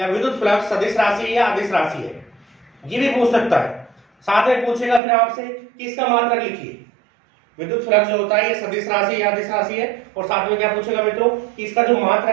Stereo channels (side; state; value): left; drops out; at 5.0 s